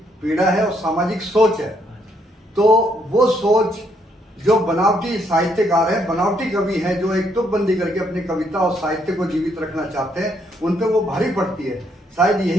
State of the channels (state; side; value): normal; both; correlation 0.72